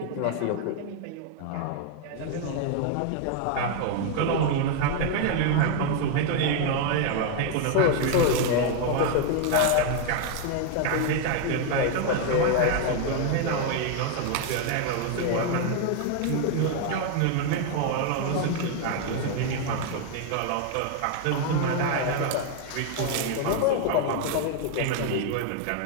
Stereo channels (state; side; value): different; both; correlation 0.00